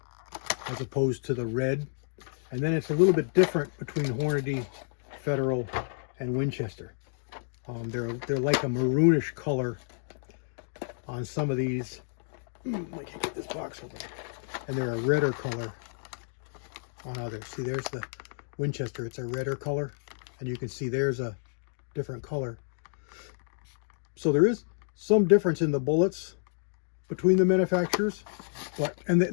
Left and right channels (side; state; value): right; silent; digital silence